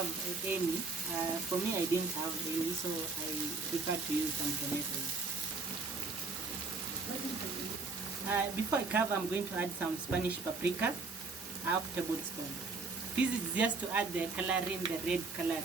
any. For me, I didn't have any, so I prefer to use some tomatoes. Before I cover, I'm going to add some Spanish paprika, half tablespoon. This is just to add the coloring, the red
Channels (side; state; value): left; quieter; 3.9 dB